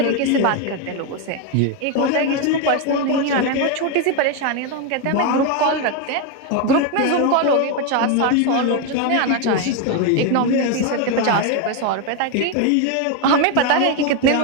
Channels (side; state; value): both; different; correlation 0.02